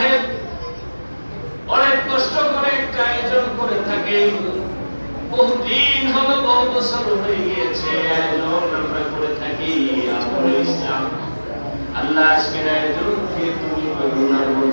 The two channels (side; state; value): both; inverted; correlation -1.00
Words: অনেক কষ্ট করে একটা আয়োজন করে থাকেন। বহুদিন হলো, বহু বছর হয়ে গিয়েছে আয়োজন আমরা করে থাকি। আমলে ইসলাম আল্লাহ আজকের আয়োজনকে তুমি করুণার